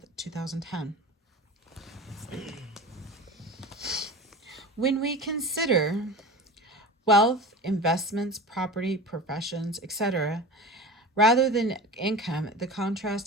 2010. When we consider wealth, investments, property, professions, etc., Rather than income, the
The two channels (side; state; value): both; normal; correlation 0.33